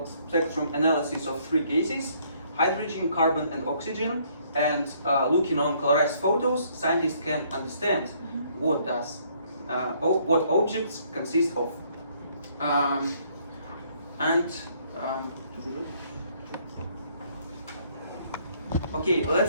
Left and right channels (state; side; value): inverted; both; correlation -0.65